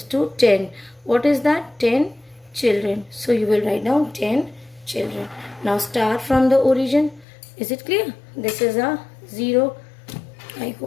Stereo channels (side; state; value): right; drops out; at 7.2 s